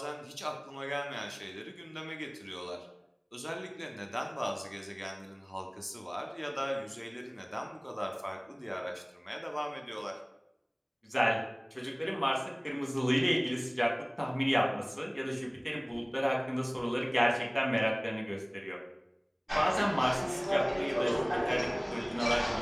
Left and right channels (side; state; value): both; identical; correlation 1.00